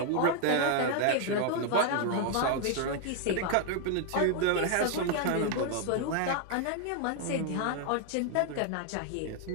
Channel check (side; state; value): both; different; correlation 0.00